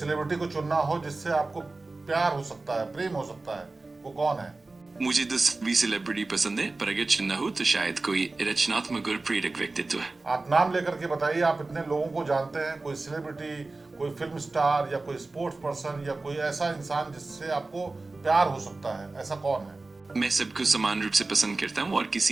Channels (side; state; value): left; quieter; 3.4 dB